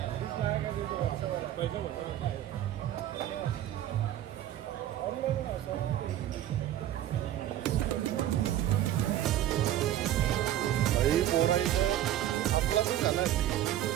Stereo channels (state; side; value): quieter; left; 12.3 dB